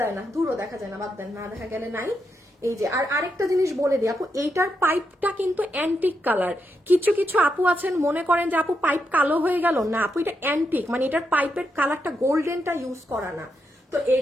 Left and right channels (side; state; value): both; normal; correlation 0.83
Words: না, দূরও দেখা যায় না, বাদ দেন, না দেখা গেলে নাই। এই যে, আর আরেকটা জিনিস বলে দিই আপু, এইটার পাইপটা কিন্তু অ্যান্টিক কালার। কিছু কিছু আপু আছেন মনে করেন যে আপু পাইপ কালো হয়ে গেল, না আপু এটা অ্যান্টিক, মানে এটার পাইপের কালারটা গোল্ডেনটা ইউজ করা না। তো এই